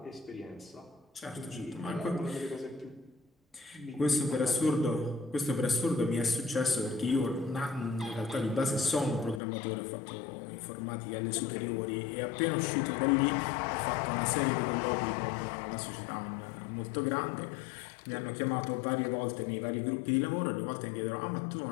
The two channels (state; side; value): drops out; right; at 9.4 s